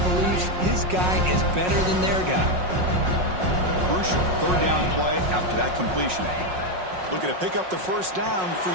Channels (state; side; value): late; left; 5.5 ms